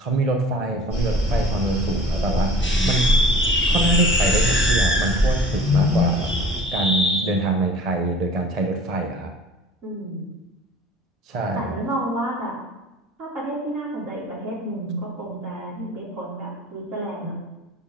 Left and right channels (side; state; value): both; normal; correlation 0.46